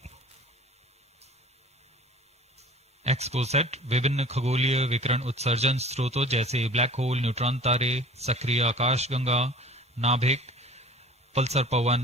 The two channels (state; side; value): normal; both; correlation 0.44